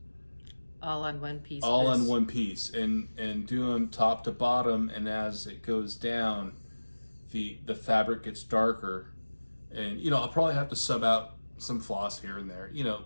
All on one piece. All on one piece, and do them top to bottom, and as it goes down, the fabric gets darker, and I'll probably have to sub out some floss here and there,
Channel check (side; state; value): both; inverted; correlation -1.00